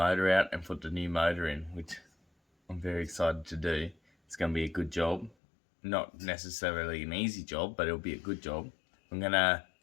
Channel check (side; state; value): right; drops out; at 5.4 s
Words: out and put the new motor in, which I'm very excited to do. It's going to be a good job. Not necessarily an easy job, but it'll be a good job. I'm going to